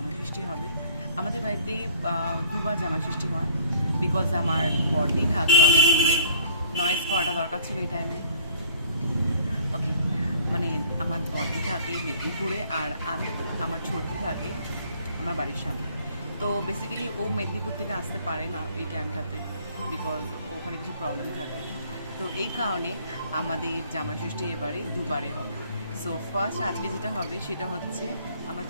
ষষ্ঠী হবে। আমাদের বাড়িতে দুবার জামা ষষ্ঠী হয়, বিকজ আমার বড়দি থাকে অনেক দূরে, নয়েজ করাটা দরকার ছিল এই টাইমে। ওকে, মানে আমার বড়দি থাকে মেদিনীপুরে আর আমার ছোটদি থাকে আমার বাড়ির সামনে। তো বেসিক্যালি ও মেদিনীপুর থেকে আসতে পারে না এই টাইমটাতে, বিকজ ওখানে কিছু প্রবলেম থাকে। তো এই কারণে আমাদের জামাই ষষ্ঠী এবারে দুবারে হবে। সো ফার্স্ট আজকে যেটা হবে সেটা হচ্ছে আমার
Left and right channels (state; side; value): inverted; both; correlation -0.55